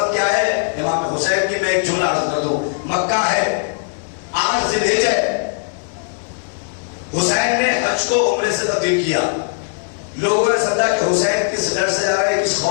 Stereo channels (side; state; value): right; silent; digital silence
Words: کیا ہے؟ امام حسین کی میں ایک جملہ عرض کر دوں. مکہ ہے 8 ذی الحجہ ہے. حسین نے حج کو عمرے سے تبدیل کیا. لوگوں نے سمجھا کہ حسین کس ڈر سے جا رہے ہیں، کس